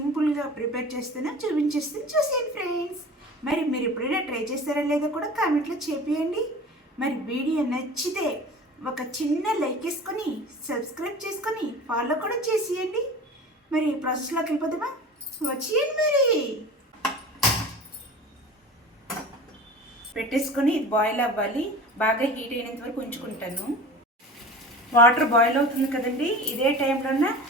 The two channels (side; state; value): both; normal; correlation 0.37